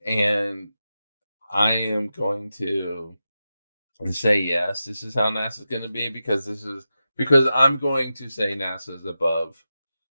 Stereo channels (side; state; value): both; inverted; correlation -0.91